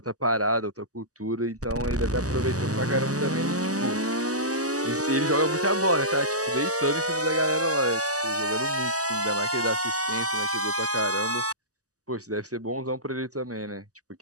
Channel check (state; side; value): late; left; 0.67 ms